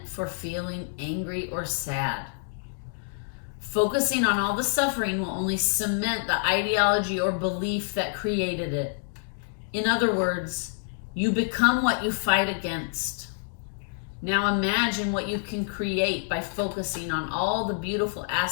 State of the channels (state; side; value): silent; right; digital silence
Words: for feeling angry or sad. Focusing on all the suffering will only cement the ideology or belief that created it. In other words, you become what you fight against. Now imagine what you can create by focusing on all the beautiful